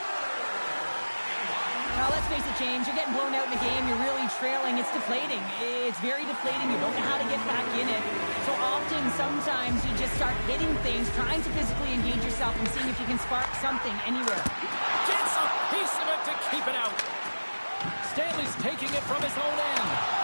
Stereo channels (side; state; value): both; inverted; correlation -1.00